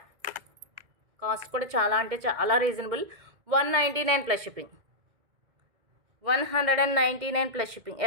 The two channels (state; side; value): late; left; 2.1 ms